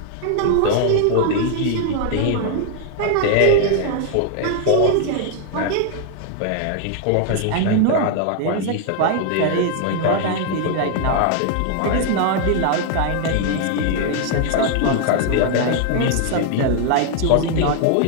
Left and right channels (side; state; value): both; different; correlation 0.00